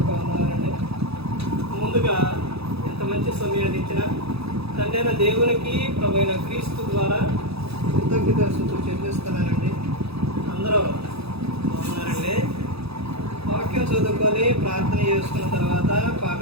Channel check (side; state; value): left; late; 0.78 ms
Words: వందనాలండి. ముందుగా ఎంత మంచి సమయాన్ని ఇచ్చిన తండ్రైన దేవునికి ప్రభువైన క్రీస్తు ద్వారా కృతజ్ఞతాస్తుతులు చెల్లిస్తున్నానండి. అందరూ బాగున్నారండి. వాక్యం చదువుకొని ప్రార్థన చేసుకున్న తర్వాత